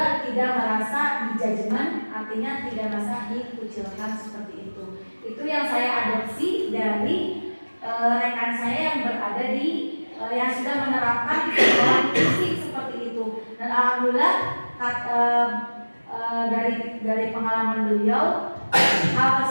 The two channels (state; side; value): inverted; both; correlation -1.00